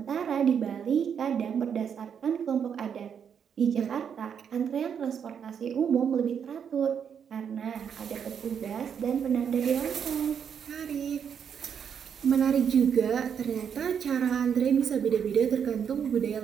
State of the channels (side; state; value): left; quieter; 7.6 dB